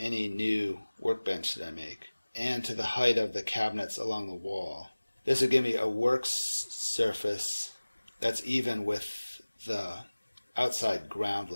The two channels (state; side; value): inverted; both; correlation -1.00